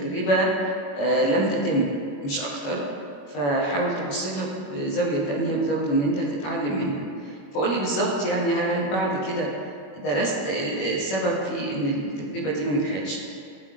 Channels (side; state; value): right; late; 21 ms